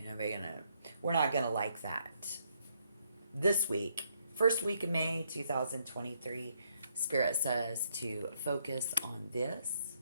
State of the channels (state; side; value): inverted; both; correlation -0.73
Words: know, we're not gonna like that. This week, first week of May 2023, Spirit says to focus on this,